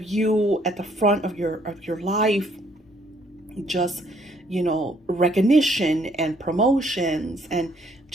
you at the front of your life, just recognition and promotions, and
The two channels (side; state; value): both; normal; correlation 0.66